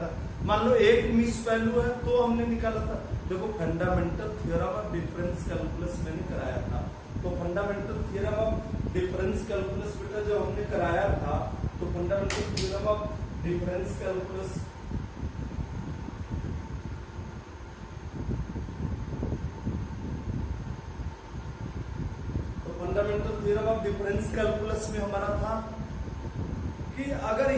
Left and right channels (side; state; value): both; identical; correlation 1.00